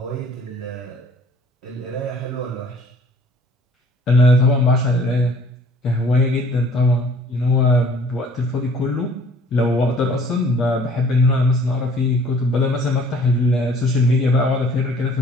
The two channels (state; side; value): normal; both; correlation 0.55